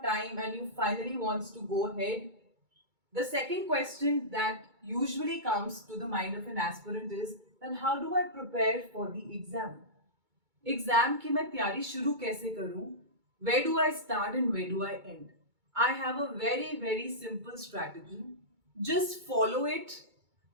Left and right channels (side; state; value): left; late; 2.2 ms